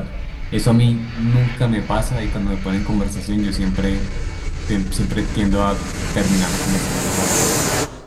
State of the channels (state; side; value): identical; both; correlation 1.00